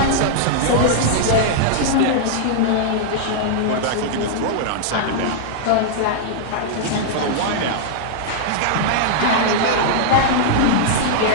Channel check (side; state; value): both; different; correlation -0.01